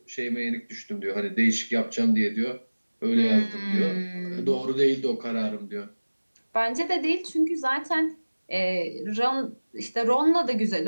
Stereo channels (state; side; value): inverted; both; correlation -1.00